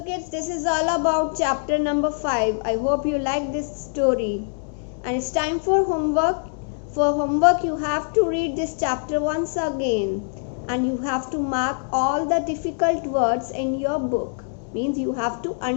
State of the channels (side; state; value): right; silent; digital silence